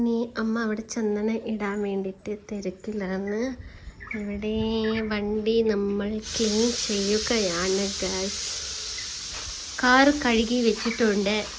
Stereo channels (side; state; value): both; identical; correlation 1.00